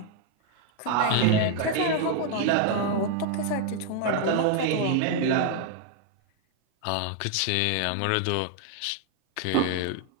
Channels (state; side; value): different; both; correlation 0.00